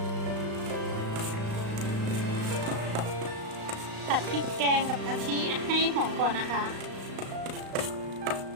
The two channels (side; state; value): left; late; 35 ms